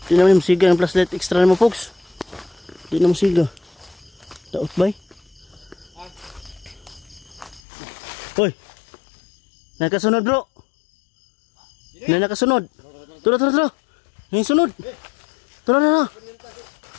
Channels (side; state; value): right; drops out; at 7.6 s